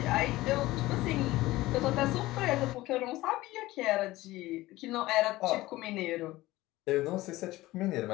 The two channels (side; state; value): right; quieter; 18.0 dB